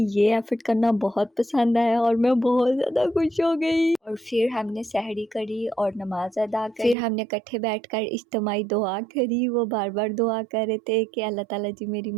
ये एफर्ट करना बहुत पसंद आया और मैं बहुत ज्यादा खुश हो गई। और फिर हमने सहरी करी और नमाज अदा करी। फिर हमने इकट्ठे बैठकर इज्तिमाई दुआ करी। वो बार बार दुआ कर रहे थे कि अल्लाह ताला जी मेरी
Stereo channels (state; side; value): drops out; left; at 7.0 s